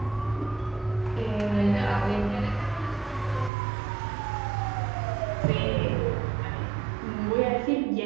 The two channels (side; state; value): left; drops out; at 3.5 s